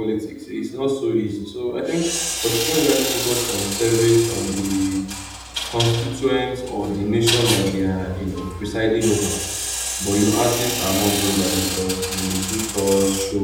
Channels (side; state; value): both; identical; correlation 1.00